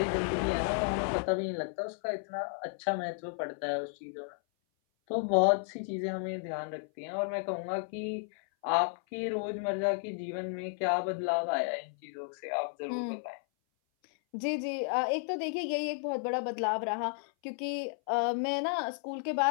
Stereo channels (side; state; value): right; silent; 56 dB below the other